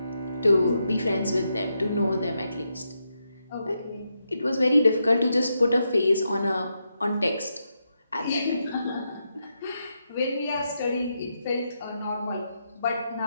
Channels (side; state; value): both; inverted; correlation -0.84